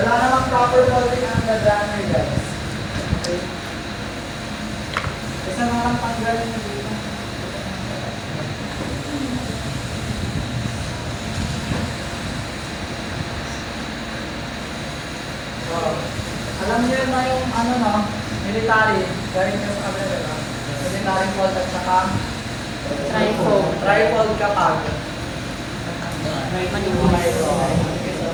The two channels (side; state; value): both; identical; correlation 1.00